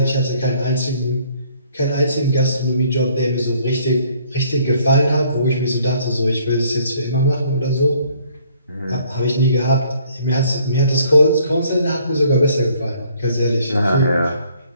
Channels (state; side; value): inverted; both; correlation -0.62